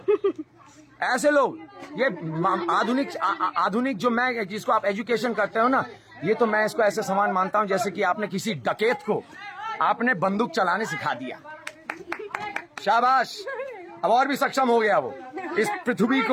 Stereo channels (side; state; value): both; identical; correlation 1.00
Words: ऐसे लोग। ये आधुनिक जो मैं, जिसको आप एजुकेशन करते हो ना, ये तो मैं इसको ऐसे समान मानता हूं जैसे कि आपने किसी डकैत को आपने बंदूक चलाने सिखा दिया। शाबाश, अब और भी सक्षम हो गया वो इस पृथ्वी